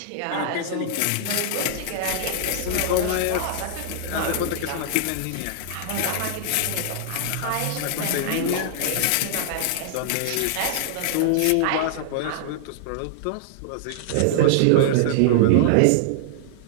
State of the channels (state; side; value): different; both; correlation -0.01